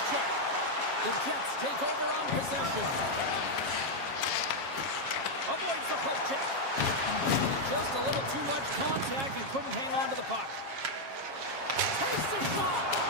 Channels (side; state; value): left; late; 7.4 ms